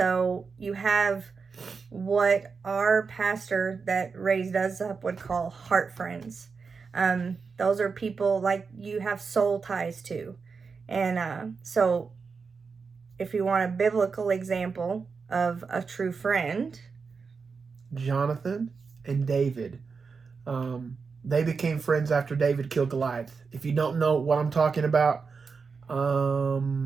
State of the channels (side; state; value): left; quieter; 5.1 dB